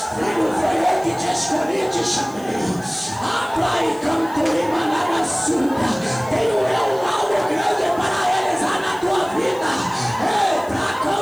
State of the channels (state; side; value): noise; left; hiss, 22 dB below the sound